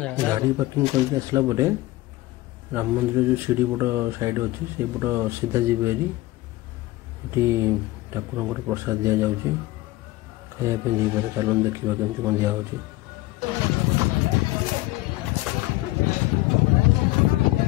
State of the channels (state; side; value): quieter; right; 18.3 dB